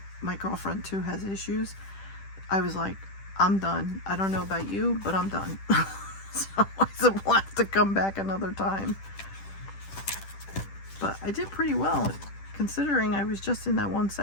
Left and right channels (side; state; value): right; late; 10 ms